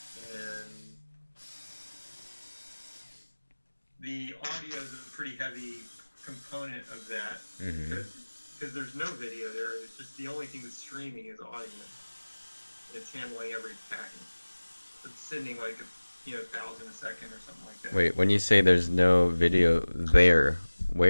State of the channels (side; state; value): both; inverted; correlation -1.00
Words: And the audio is a pretty heavy component of that because there's no video there. It's just the only thing that's streaming is audio. It's handling every packet. It's sending like 1,000 a second or something like that. Wait, when you say there's no video there,